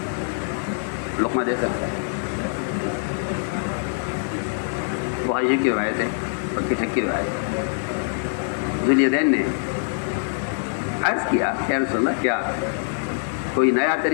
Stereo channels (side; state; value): right; silent; 63 dB below the other